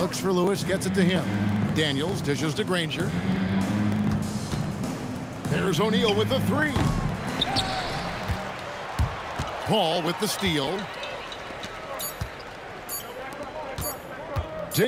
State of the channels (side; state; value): both; identical; correlation 1.00